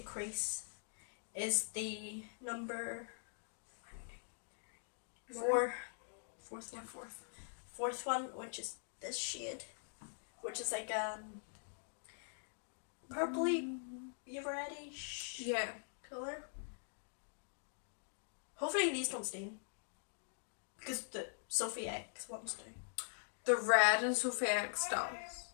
crease, is the number 4. Fourth one. Fourth one, which is this shade, which is like purpley, reddish colour. Hopefully these don't stain, because the Sophie X ones do. The red and Sophie X does,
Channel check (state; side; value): silent; right; digital silence